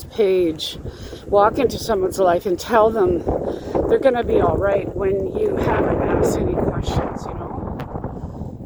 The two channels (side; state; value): both; identical; correlation 1.00